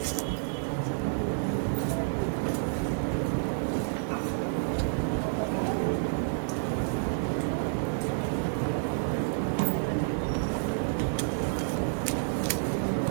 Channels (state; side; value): silent; left; digital silence